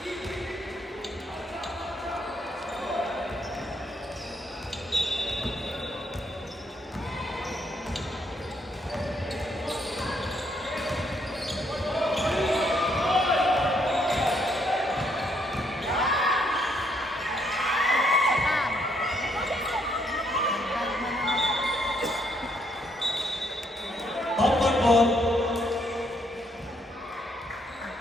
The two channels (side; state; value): both; normal; correlation 0.72